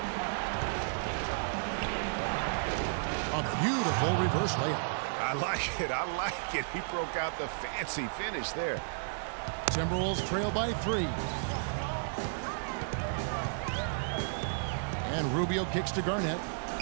A beautiful reverse layup. I like it. I like it. He broke out the fancy finish there. Timberwolves trail by 3. And Rubio kicks to Garnett.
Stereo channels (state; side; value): silent; left; 56 dB below the other